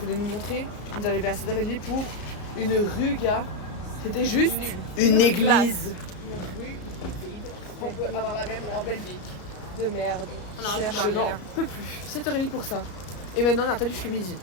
nous montrer? On est arrivé à 7h30 pour une rue, gars. C'était juste une église. On peut avoir la même en Belgique. De merde. On Je n'en peux plus. 7h30 pour ça. Et maintenant on attend jusqu'à midi.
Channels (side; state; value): right; late; 33 ms